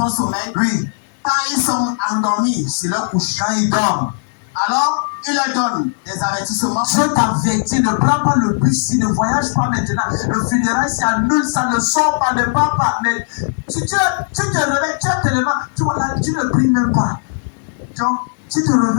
sommeil, Oui. quand ils sont endormis sur leur couche, Quand il dort, alors il leur donne des avertissements. Dieu t'avertit, ne prends pas le bus, ne voyage pas maintenant. Le funérail s'annule, ça ne sort pas, ne part pas. Mais si tu te réveilles, tu as tellement, tu vois là, tu ne pries même pas. Donc, tu te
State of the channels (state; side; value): silent; right; digital silence